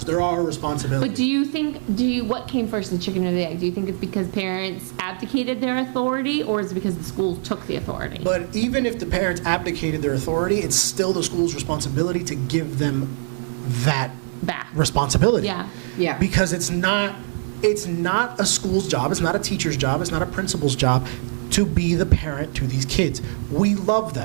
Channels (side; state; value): left; silent; digital silence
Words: They're our responsibility. But what came first, the chicken or the egg? Do you think it's because parents abdicated their authority, or is it because the schools took the authority? But even if the parents abdicated their authority, it's still the school's responsibility to give them that Back. responsibility. Yeah. Yeah. Because it's not a school's job, it's not a teacher's job, it's not a principal's job to be the parent to these kids. We love